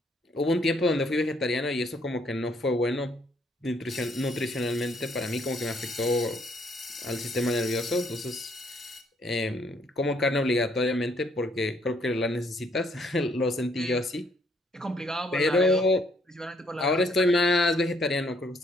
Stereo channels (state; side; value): normal; both; correlation 0.68